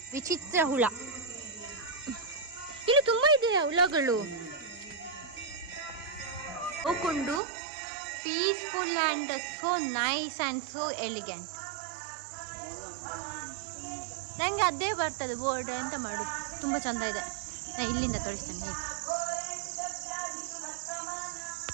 ವಿಚಿತ್ರ ಹುಳ. ಇಲ್ಲಿ ತುಂಬಾ ಇದೆ ಹುಳಗಳು. ಹೋಗ್ಕೊಂಡು peaceful and so nice and so elegant. ನನಗೆ ಅದೇ ಬರ್ತದೆ ಬೋರ್ಡ್, ಎಂತ ಮಾಡೋದು. ತುಂಬ ಚಂದ ಇದೆ. ನಾನು ಇಲ್ಲಿಂದ ತೋರಿಸ್ತೇನೆ ಹೇಗೆ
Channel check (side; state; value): left; drops out; at 7.4 s